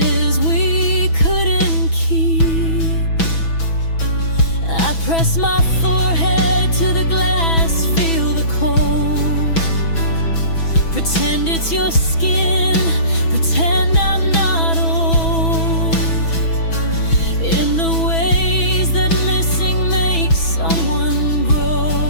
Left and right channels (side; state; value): right; late; 6.1 ms